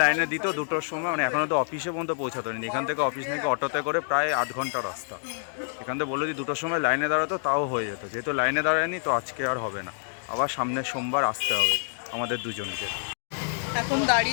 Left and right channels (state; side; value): silent; right; digital silence